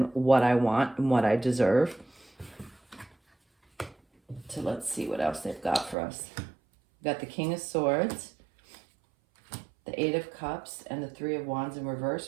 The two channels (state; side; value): drops out; left; at 6.0 s